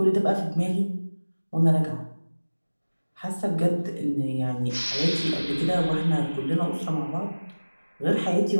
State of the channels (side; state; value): both; inverted; correlation -1.00